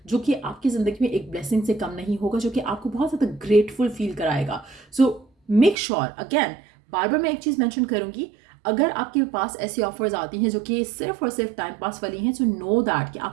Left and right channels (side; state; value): left; drops out; at 5.8 s